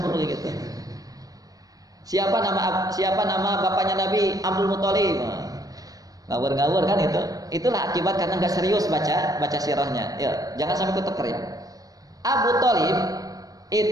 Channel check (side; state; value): left; late; 0.18 ms